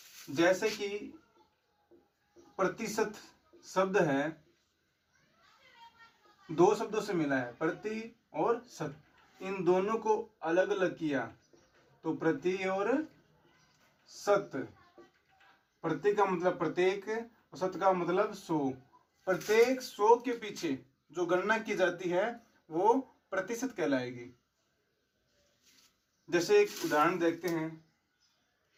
जैसे कि प्रतिशत शब्द है, दो शब्दों से मिला है, प्रति और शत। इन दोनों को अलग अलग किया तो प्रति और शत। प्रति का मतलब प्रत्येक और शत का मतलब 100। प्रत्येक 100 के पीछे जो गणना की जाती है वो प्रतिशत कहलाएगी। जैसे एक उदाहरण देखते हैं।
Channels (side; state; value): both; identical; correlation 1.00